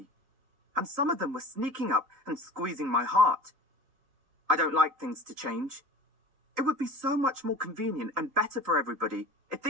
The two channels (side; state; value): left; late; 4.0 ms